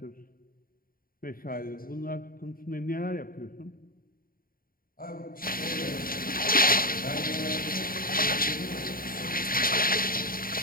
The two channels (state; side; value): late; right; 0.42 ms